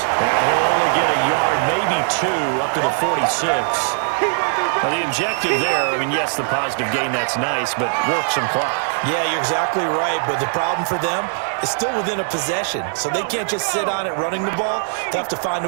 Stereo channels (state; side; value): silent; left; digital silence